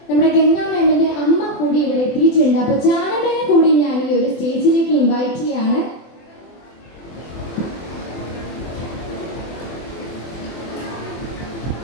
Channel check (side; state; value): right; late; 24 ms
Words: നമ്മുടെ ഗംഗാ മാമിന്റെ അമ്മ കൂടി ഇവിടെ എത്തിയിട്ടുണ്ട്. അപ്പോൾ ജാനമ്മയെ കൂടി ഞാൻ ഈ ഒരു സ്റ്റേജിലേക്ക് ഇൻവൈറ്റ് ചെയ്യാണ്.